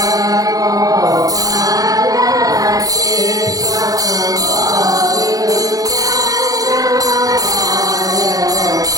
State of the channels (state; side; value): late; left; 0.17 ms